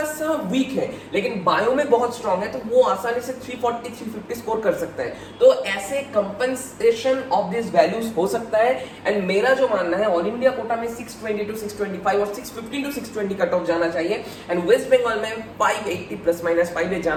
सा वीक है लेकिन बायो में बहुत स्ट्रांग है तो वो आसानी से 340 350 स्कोर कर सकता है। तो ऐसे कंपनसेशन ऑफ दिस वैल्यूज हो सकता है। एंड मेरा जो मानना है ऑल इंडिया कोटा में 620 to 625 और 615 to 620 कट ऑफ जाना चाहिए, एंड वेस्ट बंगाल में 580 ±5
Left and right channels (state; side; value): identical; both; correlation 1.00